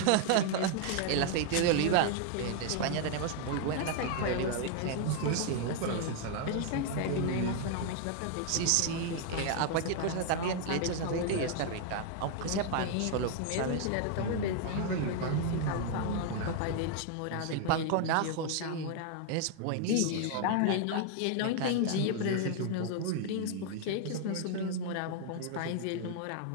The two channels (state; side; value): different; both; correlation 0.00